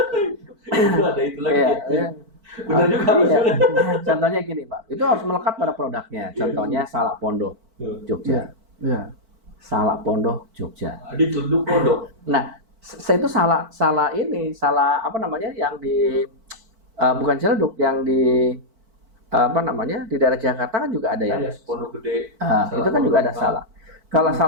Itu ada itu lagi. Ya. Benar juga. Contohnya gini, Pak. Itu harus melekat pada produknya. Contohnya Salak Pondok, Jogja. Salak Pondok, Jogja. Di Tunduk Pondok. Nah, saya itu salah yang di bukan Ciledug, yang di di daerah Jakarta kan juga ada ya. Pondok Gede. Itu kan juga ada Salak. Kalau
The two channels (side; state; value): left; late; 4.5 ms